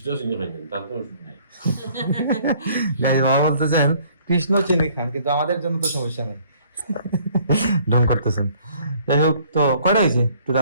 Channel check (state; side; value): inverted; both; correlation -0.59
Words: চিনি খাইছেন তার কোনো শুনি নাই গাইস বাবা বলতেছেন কৃষ্ণ চিনি খান কিন্তু আমাদের জন্য তো সমস্যা নাই ঢং করতেছেন যাই হোক তো কয়টা হয়েছে